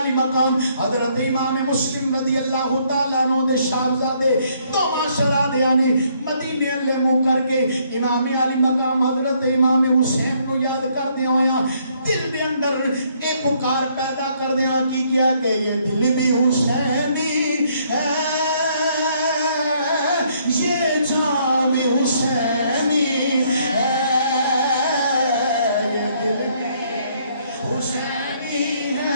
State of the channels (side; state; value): both; inverted; correlation -0.68